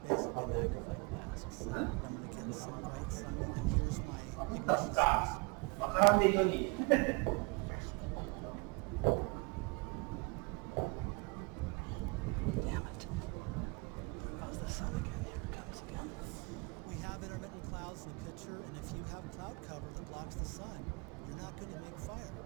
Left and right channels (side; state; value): left; quieter; 31.0 dB